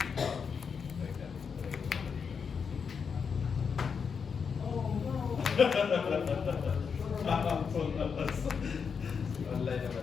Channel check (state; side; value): quieter; right; 6.1 dB